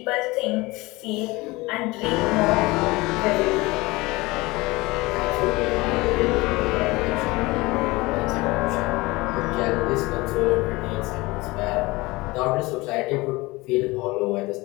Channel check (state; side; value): quieter; right; 22.0 dB